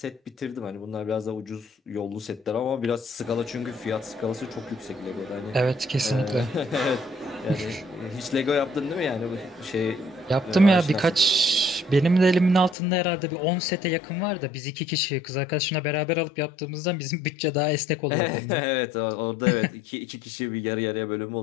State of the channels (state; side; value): drops out; right; at 12.8 s